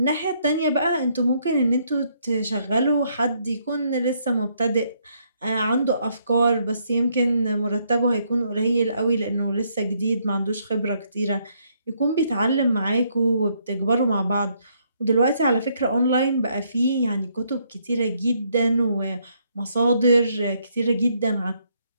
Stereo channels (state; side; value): inverted; both; correlation -0.72